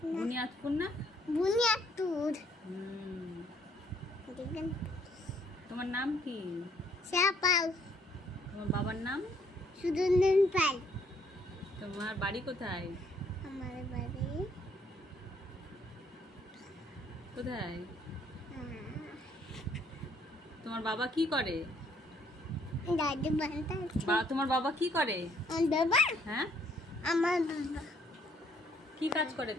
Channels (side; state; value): both; normal; correlation 0.66